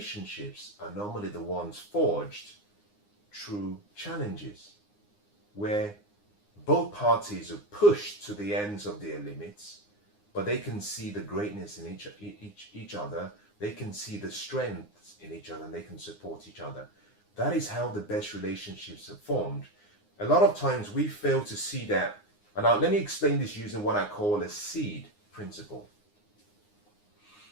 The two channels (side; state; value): right; late; 9.7 ms